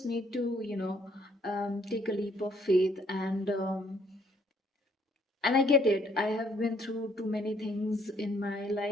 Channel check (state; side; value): normal; both; correlation 0.66